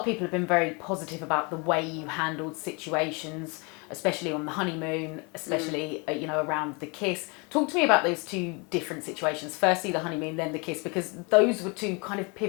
people have been very positive about the way you handled situations, especially on the honeymoon, especially around the kiss. Talk to me about those two different situations. Firstly, the honeymoon, then the kiss, because those were two kind of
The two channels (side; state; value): right; quieter; 30.7 dB